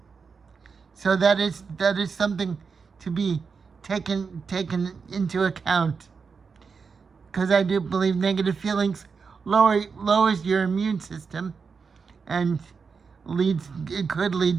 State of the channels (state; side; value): quieter; left; 5.4 dB